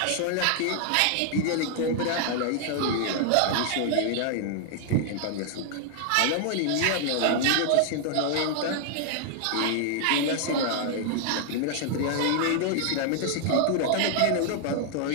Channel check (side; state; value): both; different; correlation 0.00